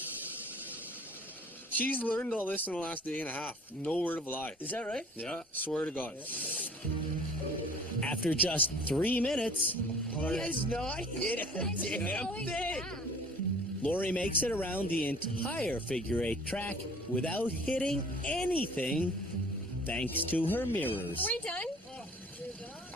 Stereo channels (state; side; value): normal; both; correlation 0.50